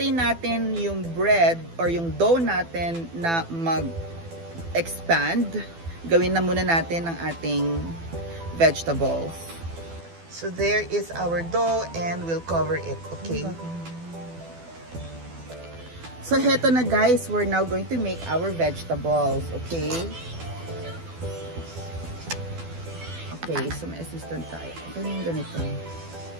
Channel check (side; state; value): left; late; 12 ms